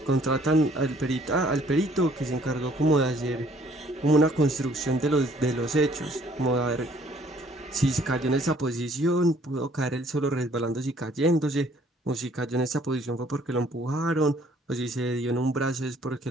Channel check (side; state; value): both; normal; correlation 0.60